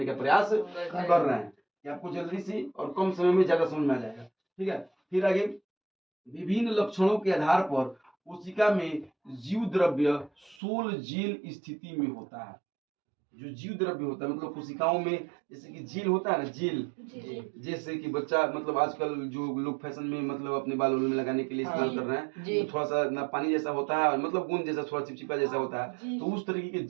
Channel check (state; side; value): drops out; left; at 10.6 s